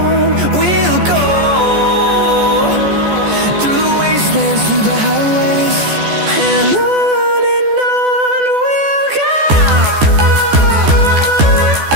we'll go, through the wastelands, through the highways, and on.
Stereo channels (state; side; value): late; left; 14 ms